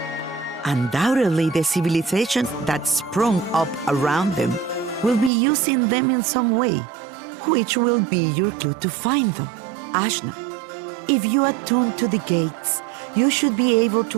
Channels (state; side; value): drops out; left; at 5.3 s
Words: Undoubtedly, the civilizations that sprung up around them will be using them in some way, which will be your clue to find them. Ashna, if you attune to the gates, you should be able